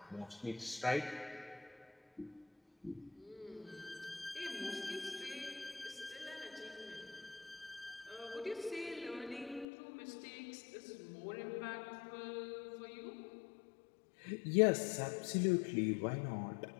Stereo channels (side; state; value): right; drops out; at 9.7 s